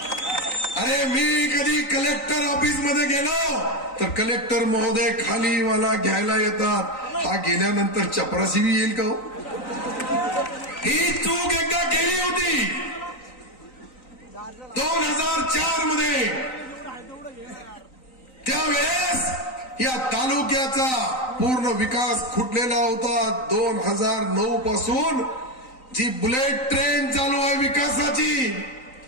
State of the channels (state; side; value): late; right; 3.9 ms